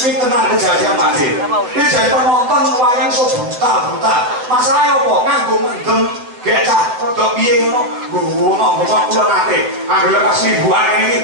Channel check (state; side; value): late; left; 8.1 ms